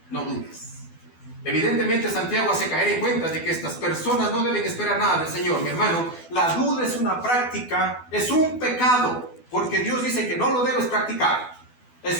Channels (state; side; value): late; right; 12 ms